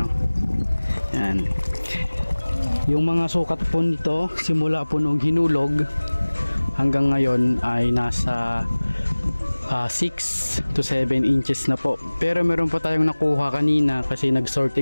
o. Yan. Yung mga sukat po nito simula po nung hinulog hanggang ngayon ay nasa 6 to 7 inches na po. Pero meron po tayong nakuha kanina kasi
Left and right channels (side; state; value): both; inverted; correlation -1.00